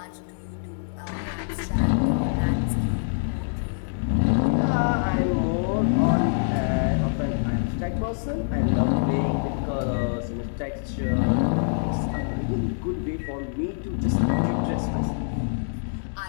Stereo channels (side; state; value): right; silent; digital silence